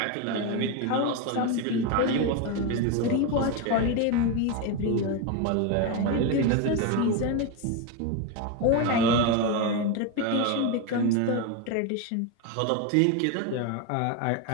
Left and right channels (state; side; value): different; both; correlation 0.03